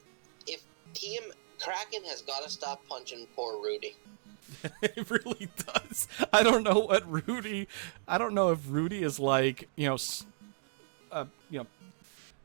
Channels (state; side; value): silent; left; digital silence